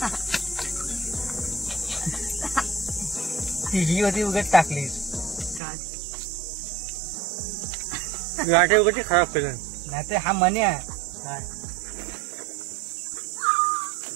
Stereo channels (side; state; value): left; drops out; at 5.6 s